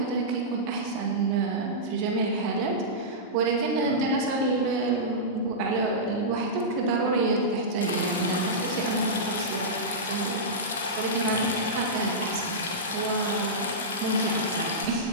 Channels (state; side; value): normal; both; correlation -0.14